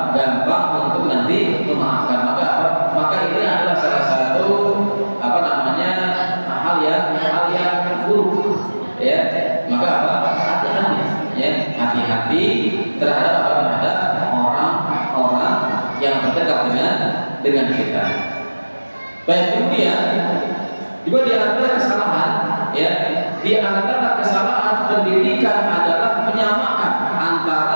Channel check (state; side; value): inverted; both; correlation -1.00